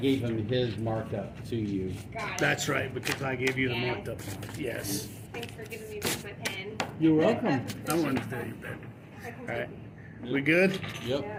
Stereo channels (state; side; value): identical; both; correlation 1.00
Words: him his markup to you. Got it. That's right, because I gave you the Yeah. marked up one. Yes. Thanks for giving me back my pen. You're welcome. I wanted to tell you that. All right. We good? Yep.